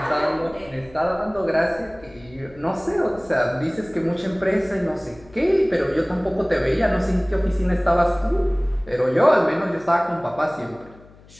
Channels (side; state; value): left; noise; hum, 24 dB below the sound